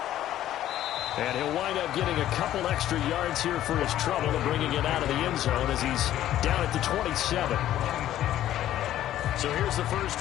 And he'll wind up getting a couple extra yards here for his trouble and bringing it out of the end zone as he's down at the 27. So here's the first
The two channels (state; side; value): quieter; right; 12.7 dB